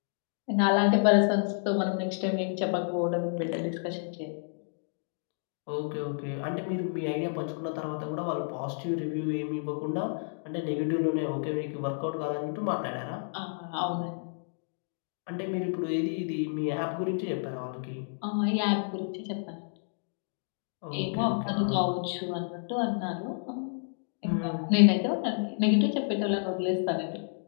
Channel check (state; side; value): silent; right; digital silence